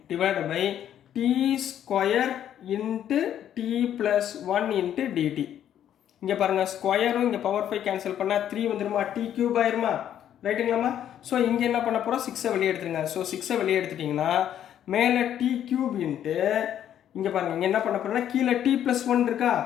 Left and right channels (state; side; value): quieter; right; 10.4 dB